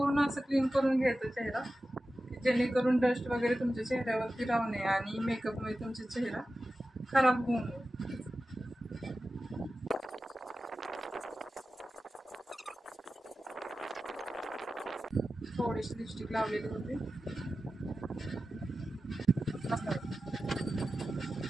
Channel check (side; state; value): both; normal; correlation 0.94